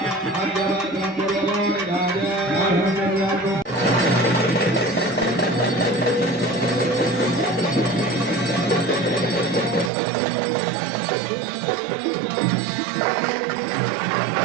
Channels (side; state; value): left; drops out; at 9.9 s